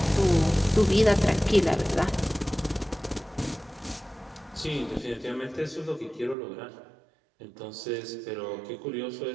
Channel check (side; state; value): left; drops out; at 6.4 s